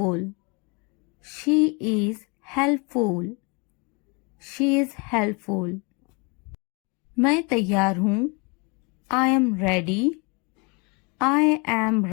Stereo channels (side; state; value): right; quieter; 31.1 dB